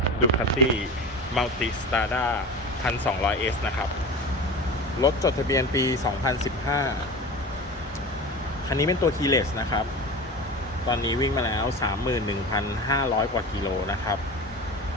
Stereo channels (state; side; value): normal; both; correlation 0.31